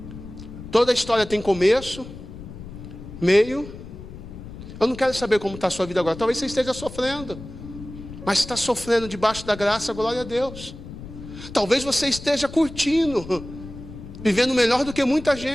Toda história tem começo, meio. Eu não quero saber como está a sua vida agora. Talvez você esteja sofrendo, mas está sofrendo debaixo da graça, glória a Deus. Talvez você esteja curtindo, vivendo melhor do que muita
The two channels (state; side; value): noise; left; rumble, 13 dB below the sound